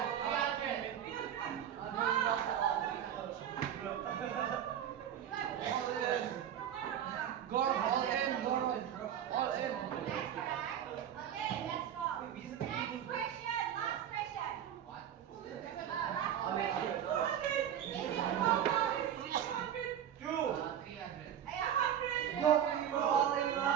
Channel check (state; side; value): quieter; left; 9.9 dB